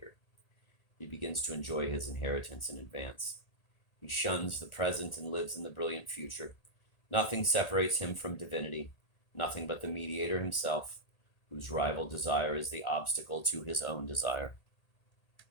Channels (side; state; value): right; late; 1.8 ms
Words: He begins to enjoy his inheritance in advance. He shuns the present and lives in the brilliant future. Nothing separates him from divinity, nothing but the mediator himself, whose rival desire is the obstacle to his own desire.